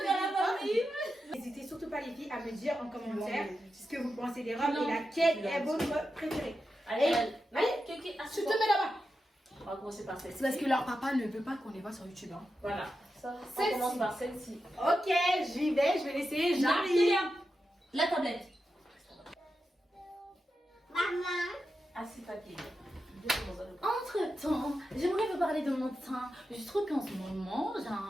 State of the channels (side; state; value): both; normal; correlation 0.89